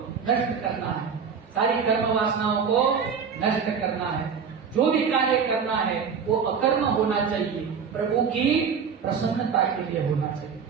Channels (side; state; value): left; quieter; 6.4 dB